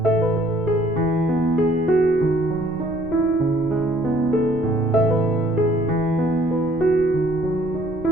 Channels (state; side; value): noise; right; rumble, 17 dB below the sound